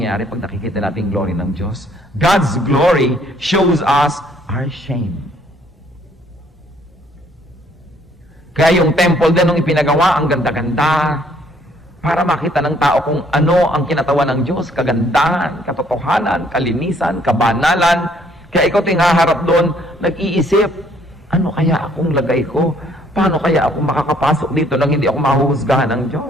pag nakikita natin glory ng Diyos? God's glory shows us our shame. Kaya yung temple din nung ipinagawa, ang ganda-ganda, para makita ng tao kung ano ang kinatawan ng Diyos, kagandahan, katotohanan, kalinisan, kabanalan. Kaya ikaw ting haharap doon, nag-iisip, ano kaya akong lagay ko? Paano kaya ako makakapasok dito nang hindi ako mahuhusgahan ng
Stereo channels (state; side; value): normal; both; correlation 0.64